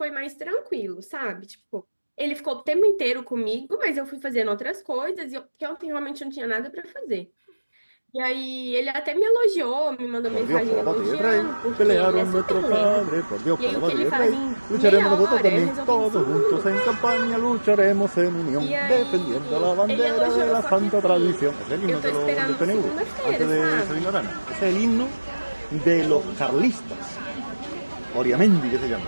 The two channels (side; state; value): both; inverted; correlation -1.00